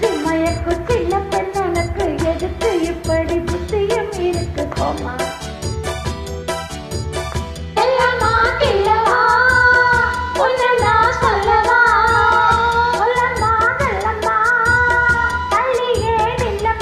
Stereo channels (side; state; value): both; identical; correlation 1.00